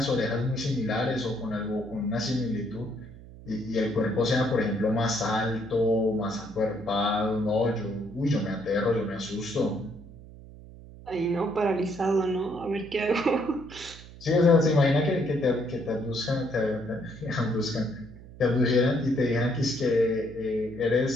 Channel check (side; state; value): right; noise; hum, 18 dB below the sound